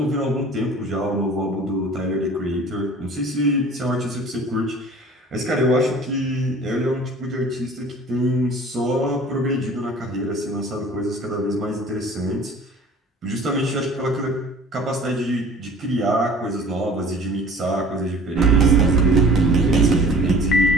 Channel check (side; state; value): both; normal; correlation 0.47